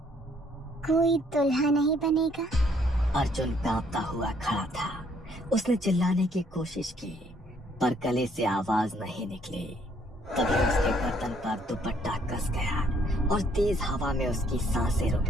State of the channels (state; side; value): normal; both; correlation 0.66